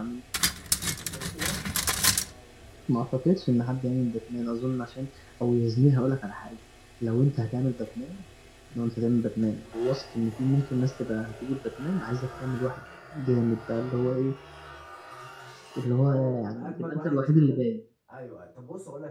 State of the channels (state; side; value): identical; both; correlation 1.00